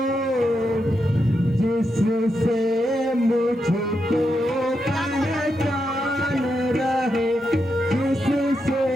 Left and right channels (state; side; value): normal; both; correlation 0.84